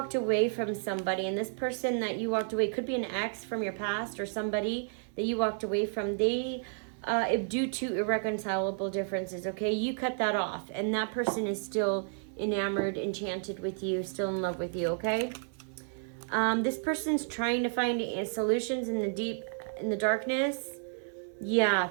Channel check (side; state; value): left; silent; digital silence